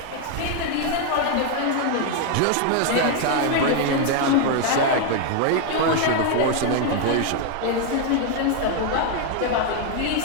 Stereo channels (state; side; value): different; both; correlation 0.01